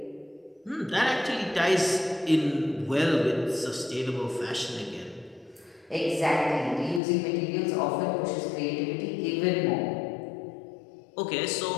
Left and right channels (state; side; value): drops out; right; at 7.0 s